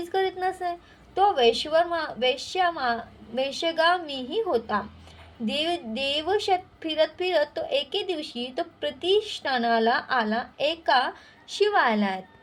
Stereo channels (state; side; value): identical; both; correlation 1.00